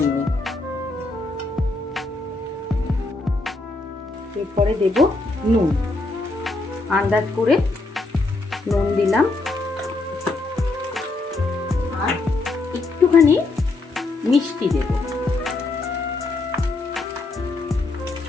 এরপরে দেব নুন, আন্দাজ করে নুন দিলাম, আর একটুখানি মিষ্টি দেব।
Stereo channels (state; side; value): quieter; right; 3.2 dB